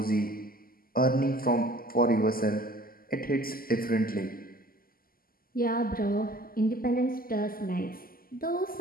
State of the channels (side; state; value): right; late; 0.42 ms